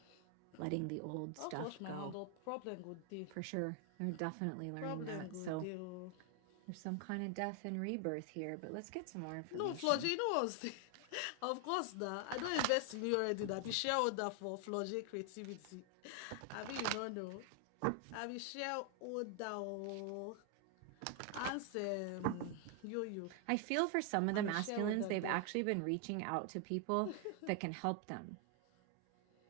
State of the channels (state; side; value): different; both; correlation 0.00